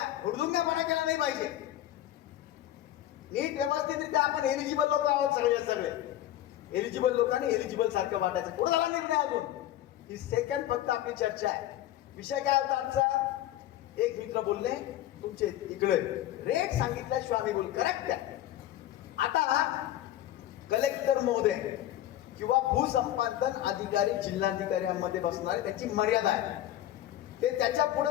हुडदुंगपणा केला नाही पाहिजे. नीट व्यवस्थितरित्या आपण एलिजिबल लोक आहोत सगळे एलिजिबल लोकांनी एलिजिबल सारखं वाटायचं. पुढे झाला निर्णय अजून. ही सेकंड फक्त आपली चर्चा आहे. विषय काय होता आमचा, एक मित्र बोलले तुमचे इकडे रेट सांगितल्याशिवाय आम्ही बोल करेक्ट आहे. आता कलेक्टर महोदय किंवा भूसंपादन अधिकारी जिल्हाधिकाऱ्यांमध्ये बसणारे त्यांची मर्यादा आहे. ते त्याच्या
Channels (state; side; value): quieter; right; 13.2 dB